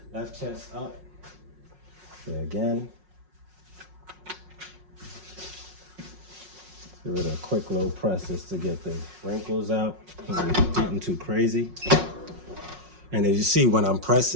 left chest up. So again, give it a quick little press just to get the wrinkles out. Nothing too crazy. And as you see, when I'm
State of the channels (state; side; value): late; left; 5.5 ms